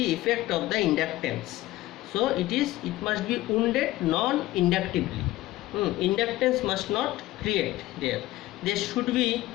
effect of the inductance. So it must be wounded non-inductively. Inductance must not create there. They should be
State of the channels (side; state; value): right; quieter; 16.9 dB